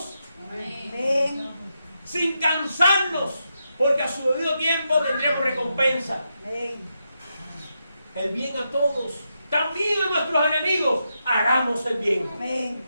Amén. Sin cansarnos, porque a su debido tiempo tendremos recompensa. Amén. El bien a todos, también a nuestros enemigos, hagamos el bien. Amén.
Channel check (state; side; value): inverted; both; correlation -0.84